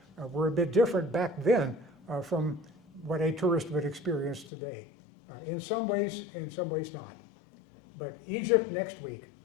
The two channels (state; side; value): drops out; right; at 4.5 s